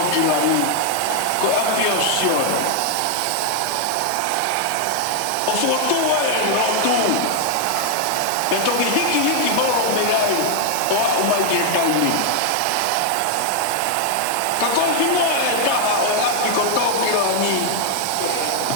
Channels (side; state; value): both; different; correlation 0.00